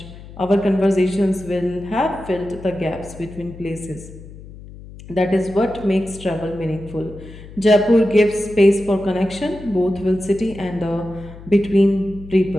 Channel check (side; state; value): left; noise; hum, 16 dB below the sound